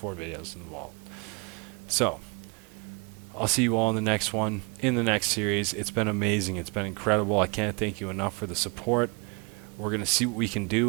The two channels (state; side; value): quieter; left; 31.5 dB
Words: videos in the vault. So I'll see you all in the next one, in the next series. It's been amazing. It's been incredible. I can't thank you enough for the support. We're going to see what we can